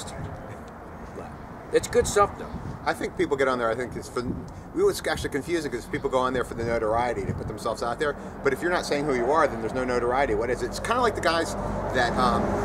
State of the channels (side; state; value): both; identical; correlation 1.00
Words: But it's good stuff, though. I think people get on there, I think it's for, it's actually confusing because people go on there for the notoriety to put themselves out there, but if you're not saying who you are, then there's no notoriety. What is it? It's kind of like the guys that